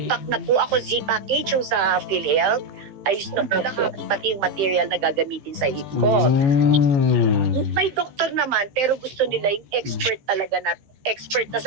na po ako, Z-package yung sa PhilHealth, ayos na po lahat, pati yung material na gagamitin sa hip ko. May doktor naman, pero gusto nila yung expert talaga na, expert na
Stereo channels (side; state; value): left; late; 15 ms